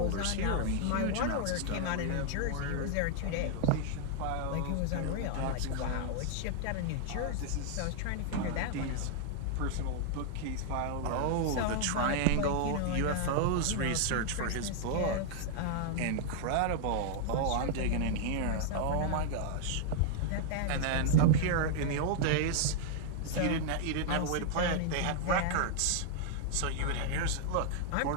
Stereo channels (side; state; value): both; different; correlation 0.00